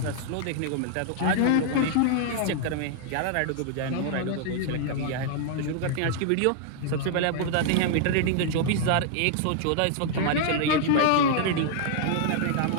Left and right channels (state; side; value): different; both; correlation -0.01